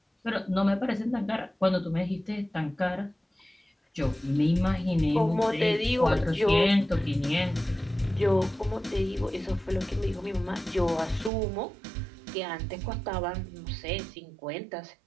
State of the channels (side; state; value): left; drops out; at 11.3 s